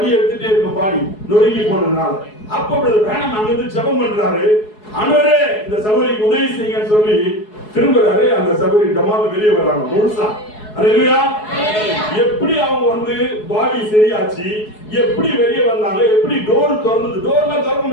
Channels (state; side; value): late; right; 4.7 ms